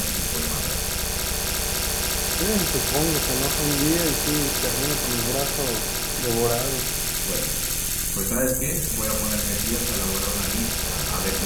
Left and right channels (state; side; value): identical; both; correlation 1.00